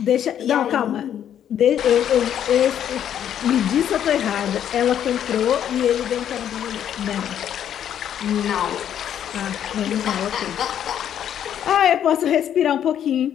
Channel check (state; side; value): quieter; right; 9.9 dB